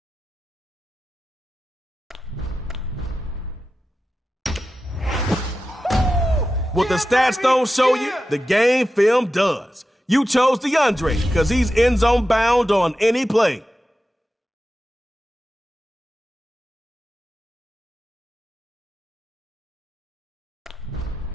What the stats don't show you, the game film does. You chose DeAndre because he's end zone bound on any play.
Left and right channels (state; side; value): normal; both; correlation 0.92